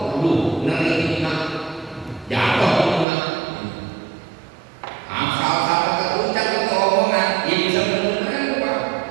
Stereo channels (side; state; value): left; drops out; at 3.1 s